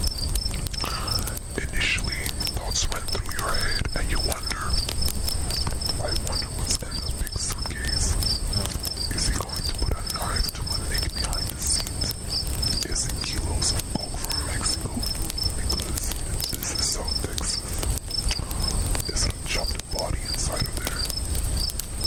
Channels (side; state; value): both; identical; correlation 1.00